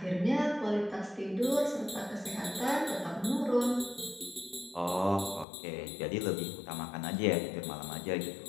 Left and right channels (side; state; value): right; drops out; at 5.5 s